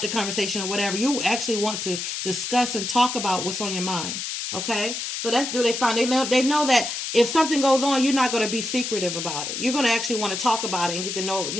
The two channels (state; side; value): noise; left; hiss, 4 dB below the sound